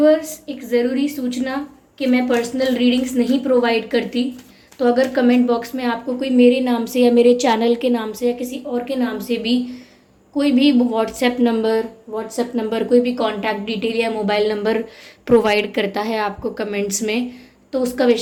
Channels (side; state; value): both; identical; correlation 1.00